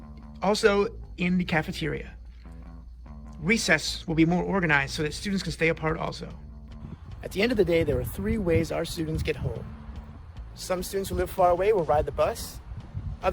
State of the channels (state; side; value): identical; both; correlation 1.00